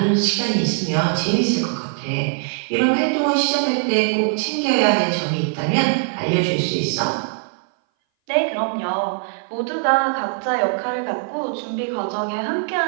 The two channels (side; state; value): left; silent; 59 dB below the other